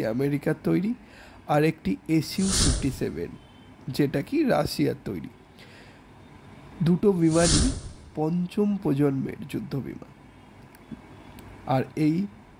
আমেরিকার তৈরি, আর একটি Su-57, যেটা কি রাশিয়ার তৈরি। দুটো বিমানই পঞ্চম প্রজন্মের যুদ্ধ বিমান, আর এই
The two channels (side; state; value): both; identical; correlation 1.00